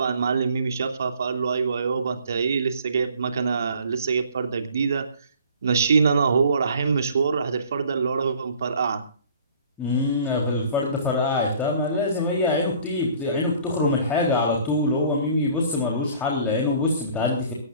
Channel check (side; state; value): both; inverted; correlation -0.52